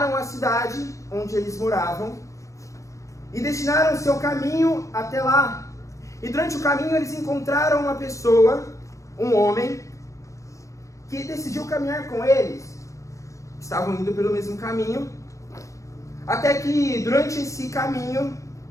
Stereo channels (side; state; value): right; late; 0.15 ms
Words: à cidade onde eles moravam e destinaram o seu caminho até lá. E durante o caminho eles encontraram uma pessoa, um homem, que decidiu caminhar com eles. Estavam indo pelo mesmo caminho, até que durante esse caminho,